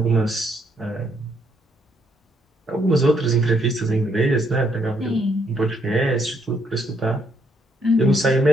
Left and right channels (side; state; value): both; normal; correlation 0.72